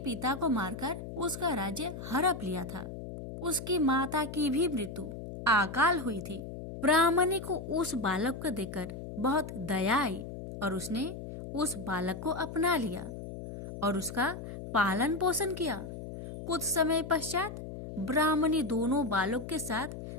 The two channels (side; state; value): left; noise; hum, 9 dB below the sound